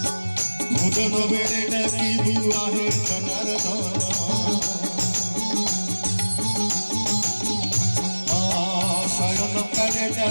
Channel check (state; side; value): inverted; both; correlation -1.00